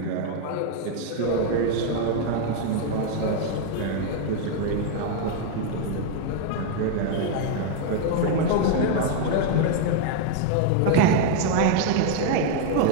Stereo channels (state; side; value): different; both; correlation 0.00